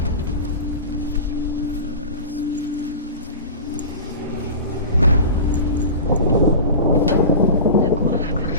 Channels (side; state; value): both; inverted; correlation -0.32